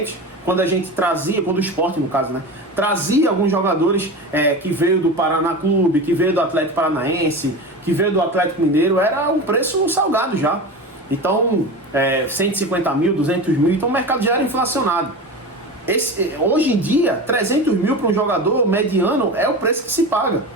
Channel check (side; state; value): both; normal; correlation 0.28